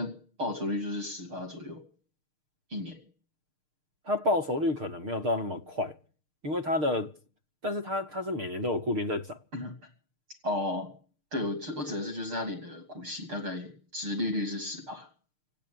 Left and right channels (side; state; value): left; late; 6.6 ms